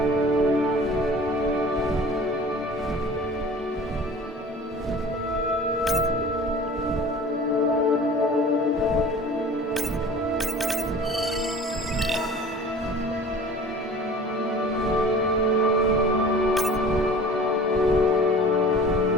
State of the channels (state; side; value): normal; both; correlation 0.43